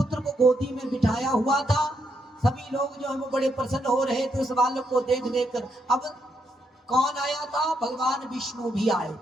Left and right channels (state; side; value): normal; both; correlation 0.78